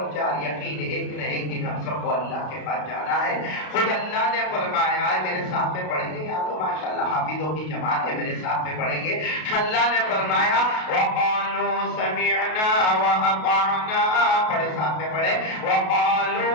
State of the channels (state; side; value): late; right; 33 ms